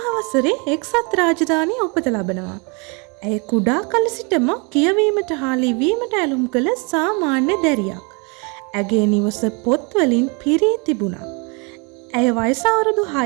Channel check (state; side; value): quieter; left; 32.3 dB